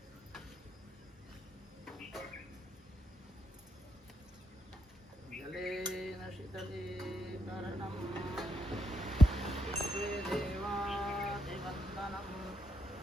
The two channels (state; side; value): normal; both; correlation 0.80